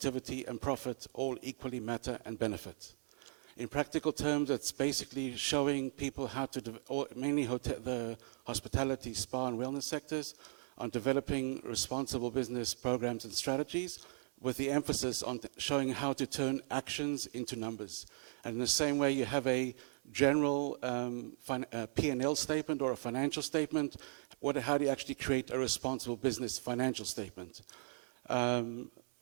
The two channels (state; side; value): silent; left; 53 dB below the other